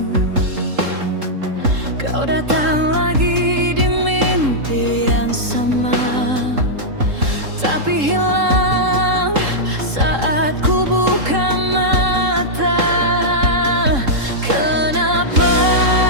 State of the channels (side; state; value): left; late; 3.7 ms